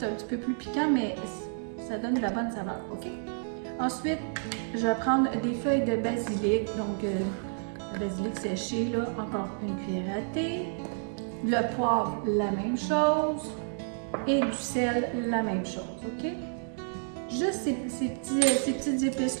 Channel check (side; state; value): left; silent; digital silence